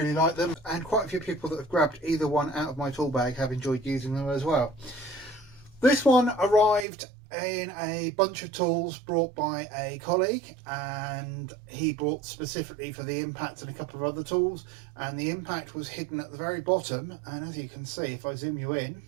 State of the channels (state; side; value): drops out; left; at 6.9 s